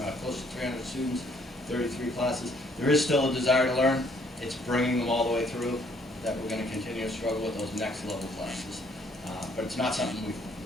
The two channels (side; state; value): both; normal; correlation 0.65